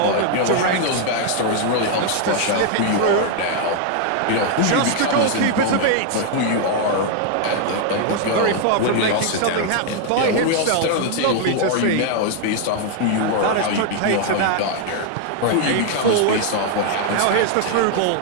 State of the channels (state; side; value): different; both; correlation 0.00